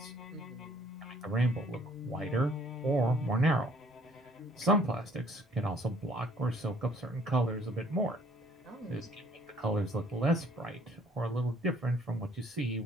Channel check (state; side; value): normal; both; correlation 0.60